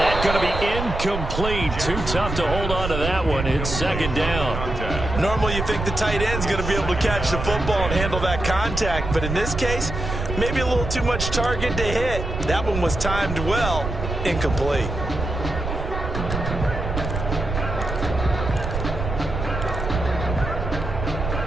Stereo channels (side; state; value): right; noise; rumble, 5 dB below the sound